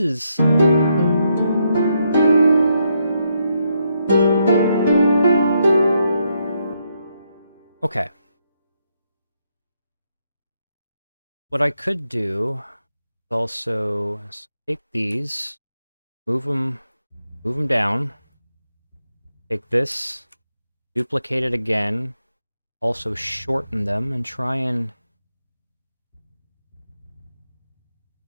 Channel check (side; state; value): both; inverted; correlation -0.79